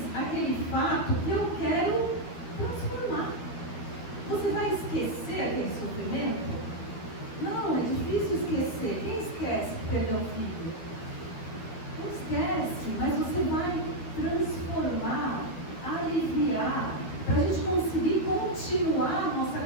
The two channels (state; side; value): late; right; 13 ms